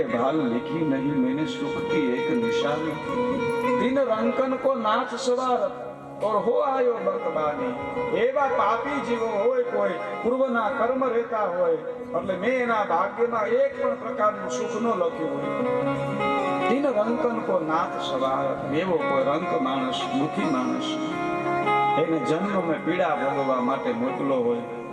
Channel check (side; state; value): both; identical; correlation 1.00